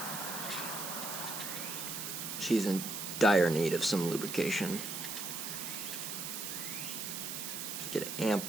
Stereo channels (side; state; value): right; noise; hiss, 5 dB below the sound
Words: She's in dire need of some lubrication. Just get